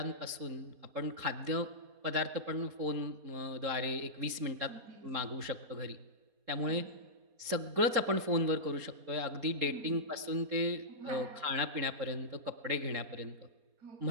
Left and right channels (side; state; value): left; late; 4.3 ms